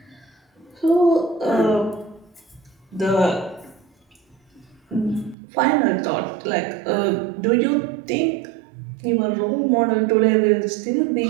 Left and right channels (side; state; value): left; drops out; at 5.4 s